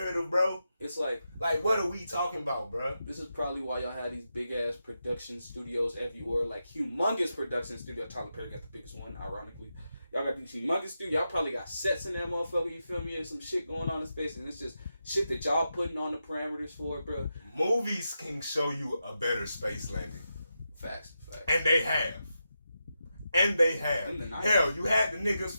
bro. It's like what are we talking about, bro? This is probably why y'all had these big ass production studios everywhere, like humongous production studio. Tyler Perry got the biggest one, ironically. Y'all got these humongous studios. Y'all probably got sets in that motherfucker, you feel me? And some shit going on in space, and it's just shit that y'all putting on the parameters for it, bro. Movies can show you a better space landing. Facts. And they have. Hell, you had the niggas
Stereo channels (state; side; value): inverted; both; correlation -0.88